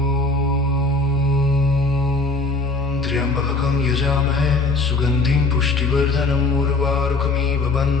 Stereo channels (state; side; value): quieter; right; 3.4 dB